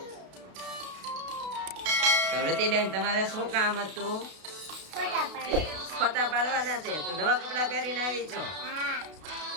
તો રુચિબેન, તમારે શું કામ હતું? फोटा पाड़ो। ફોટા પાડવાના છે. તો નવા કપડા પહેરીને આવી છો? हाँ।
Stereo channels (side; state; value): left; late; 32 ms